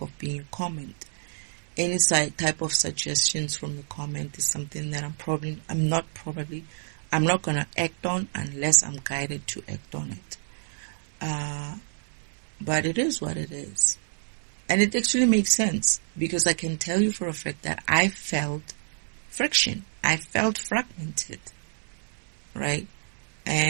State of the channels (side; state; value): left; silent; digital silence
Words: of being a comment. Any type of suggestions from the comment is something that I'm not going to act on unless I'm guided to act on it. But it is what it is. And it actually makes sense, because I can tell you for a fact that I felt friction. I felt fragmented, right?